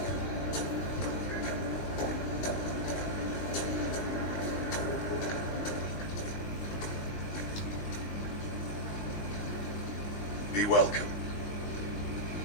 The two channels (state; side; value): late; right; 19 ms